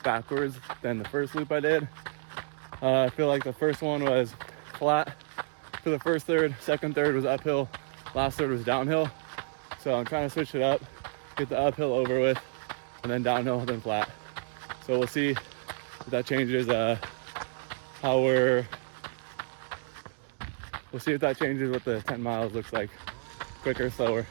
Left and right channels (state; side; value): silent; left; digital silence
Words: backwards than the first loop I did. I feel like the first one was flat for the first third, second third was uphill, last third was downhill. So I'm trying to switch it up, get the uphill over with, and then downhill, then flat. So we'll see if that changes we'll see if that changes what the 10 miles looks like. Quicker, slower,